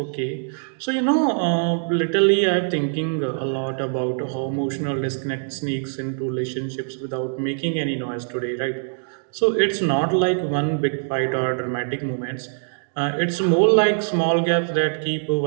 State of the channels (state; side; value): silent; left; digital silence